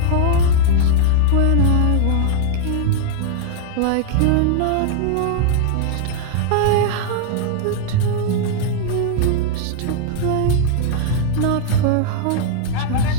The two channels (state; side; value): different; both; correlation 0.00